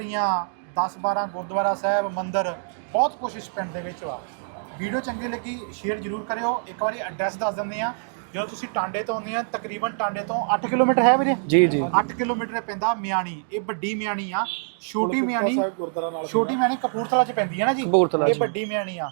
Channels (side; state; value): left; silent; digital silence